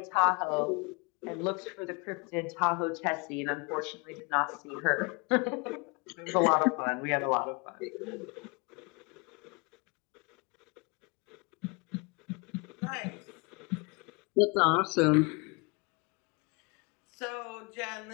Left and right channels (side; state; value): right; quieter; 29.9 dB